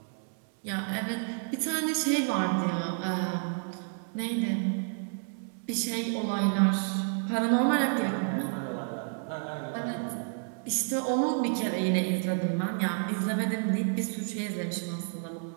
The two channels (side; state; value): left; silent; 58 dB below the other